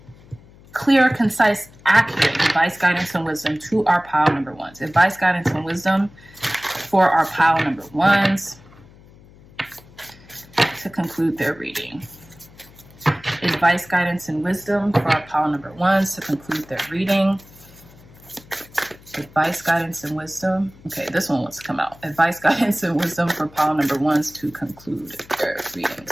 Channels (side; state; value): left; noise; hum, 24 dB below the sound